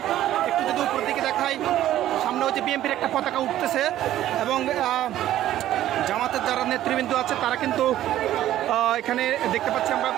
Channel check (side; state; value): left; quieter; 13.0 dB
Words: একটু যদি উপর দিকে দেখাই, সামনে হচ্ছে বিএনপির একটা পতাকা উঠতেছে এবং জামাতের যারা নেতৃবৃন্দ আছে তারা কিন্তু এখানে দেখতে পাচ্ছি আমরা